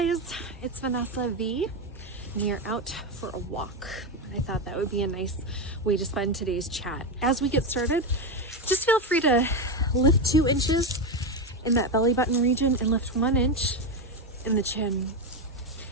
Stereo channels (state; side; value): normal; both; correlation 0.11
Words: it's Vanessa V, and you're out for a walk. I thought that would be a nice way to spend today's chat. As we get started, just feel free to lift 2 inches in that belly button region and lift 1 inch in the chin.